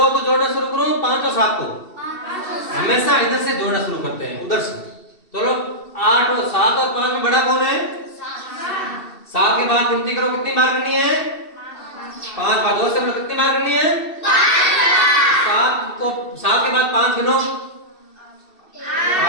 को जोड़ना शुरू करूं, 5 और 7 को? हमेशा इधर से जोड़ना शुरू करते हैं, उधर से। चलो 8 और 7 और 5 में बड़ा कौन है? 7 के बाद गिनती करो, कितनी बार करनी है? 5 बार। 2 से कितनी बार करनी है? 7 को 7 के बाद 5 गिनो,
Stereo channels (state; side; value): late; right; 2.7 ms